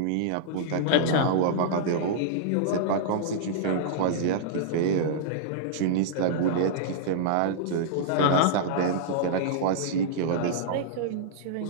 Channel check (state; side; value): different; both; correlation -0.02